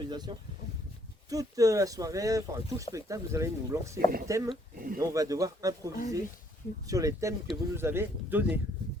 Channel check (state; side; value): normal; both; correlation 0.66